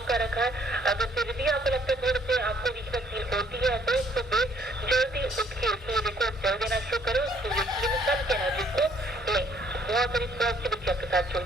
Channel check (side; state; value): both; normal; correlation 0.64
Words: कर रखा है। अगर फिर भी आपको लगता है थोड़े से आपको वीकनेस फील होती है, तो सुबह जल्दी उठ के सूर्य को जल देना शुरू करो, सूर्य की सन की एनर्जी को लें, बहुत सारी पॉजिटिविटी आपके साथ